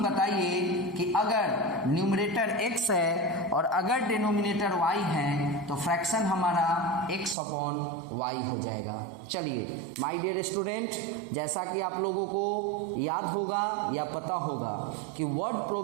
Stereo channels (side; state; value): left; drops out; at 7.4 s